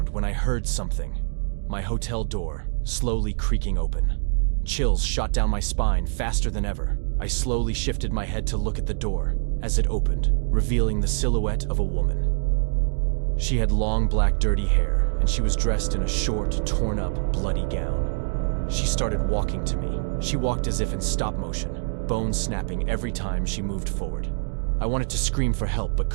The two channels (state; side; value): silent; left; digital silence